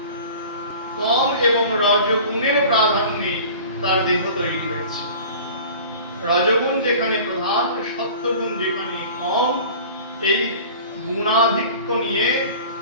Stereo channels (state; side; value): inverted; both; correlation -0.42